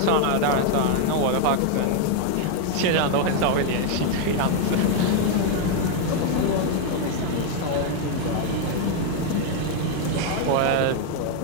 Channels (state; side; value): different; both; correlation 0.01